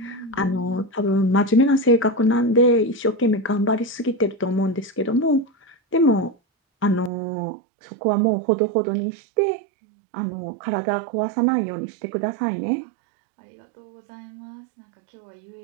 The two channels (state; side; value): drops out; left; at 7.1 s